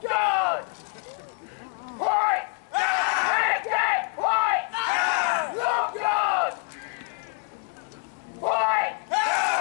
guard! Point! Again! Point! Long guard! Point!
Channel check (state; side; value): quieter; right; 32.9 dB